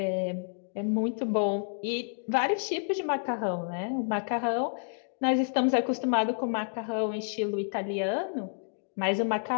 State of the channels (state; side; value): silent; right; digital silence